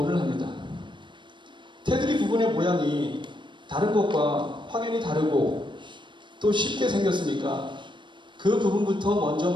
합니다. 테두리 부분의 모양이 다른 것과 확연히 다르고 또 쉽게 생겼으니까 그 부분부터 먼저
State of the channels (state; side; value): late; left; 0.23 ms